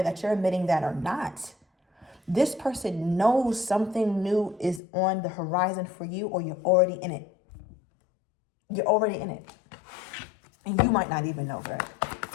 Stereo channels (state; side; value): drops out; right; at 4.8 s